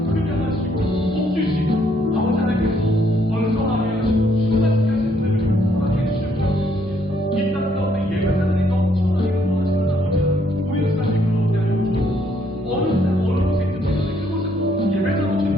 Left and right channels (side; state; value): both; normal; correlation 0.69